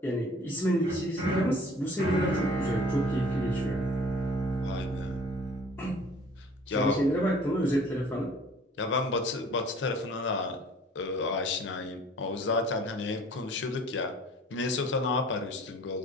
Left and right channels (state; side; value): normal; both; correlation 0.50